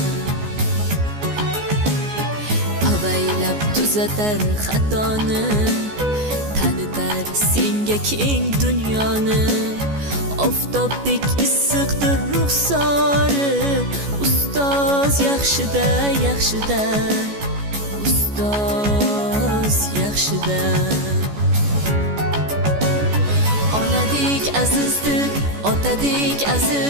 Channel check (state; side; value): late; left; 14 ms